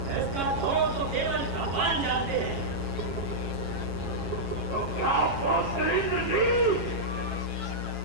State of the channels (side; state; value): left; late; 7.2 ms